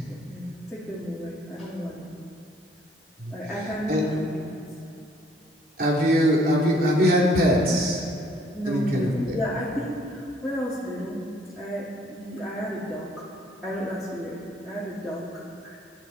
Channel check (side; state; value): both; normal; correlation 0.61